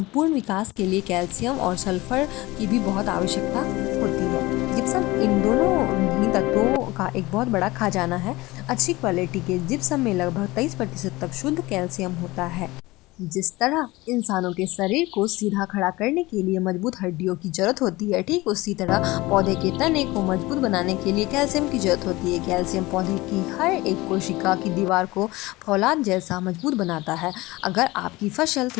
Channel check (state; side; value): quieter; right; 20.5 dB